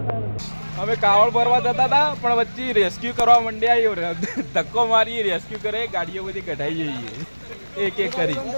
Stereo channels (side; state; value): both; inverted; correlation -1.00